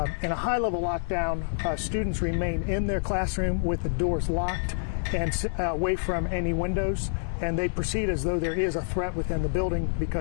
In a high-level lockdown, students remain in their classroom with the doors locked and away from any windows, and they proceed as though there is a threat within the building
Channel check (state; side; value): silent; right; 60 dB below the other